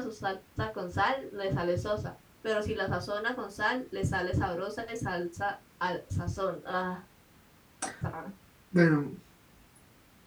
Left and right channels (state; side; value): identical; both; correlation 1.00